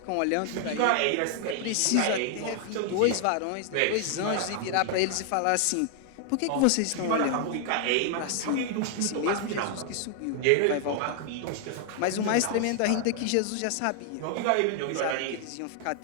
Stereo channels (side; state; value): both; different; correlation 0.00